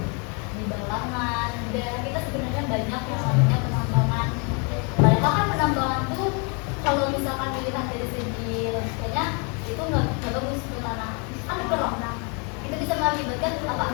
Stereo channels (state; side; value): quieter; right; 34.8 dB